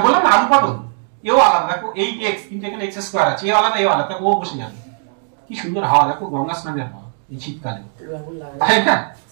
বললাম না আলু পটল, এও আলাদা, দেখো 8x কিন্তু এখানে x স্কয়ার আছে, এও আলাদা এও আলাদা, ও বসে যাবে। কি সুন্দর হাওয়া, দেখো গঙ্গা স্নানের হাওয়া এই শীতকালে, তাই না?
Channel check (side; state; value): left; silent; 60 dB below the other